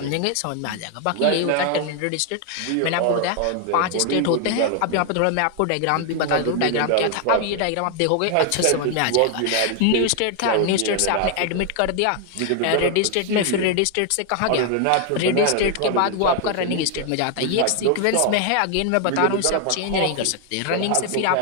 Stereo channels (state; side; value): different; both; correlation 0.00